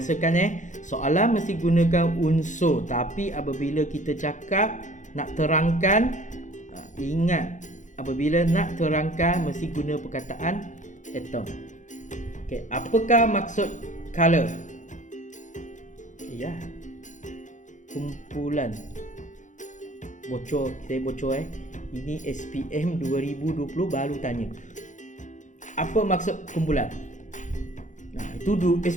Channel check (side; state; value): right; late; 0.36 ms